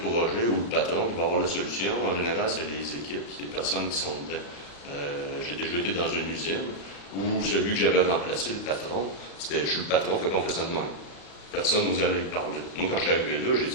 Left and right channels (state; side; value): late; right; 35 ms